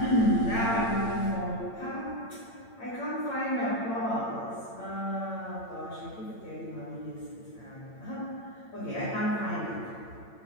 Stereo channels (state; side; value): late; right; 8.8 ms